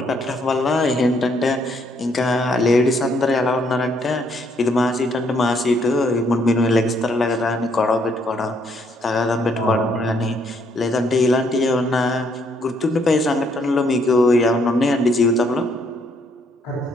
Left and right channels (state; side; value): normal; both; correlation 0.70